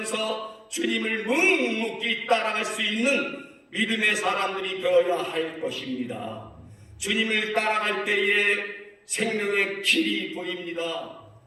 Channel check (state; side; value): identical; both; correlation 1.00